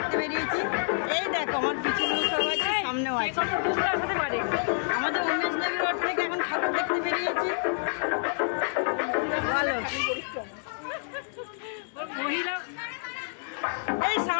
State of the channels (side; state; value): right; silent; digital silence